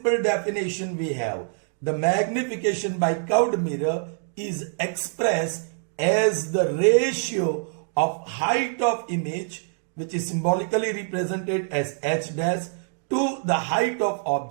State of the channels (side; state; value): left; silent; digital silence